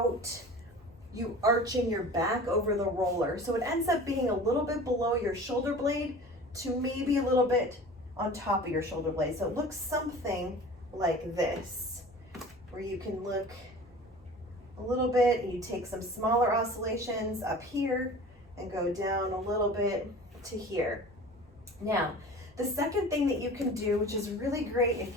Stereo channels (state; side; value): normal; both; correlation 0.40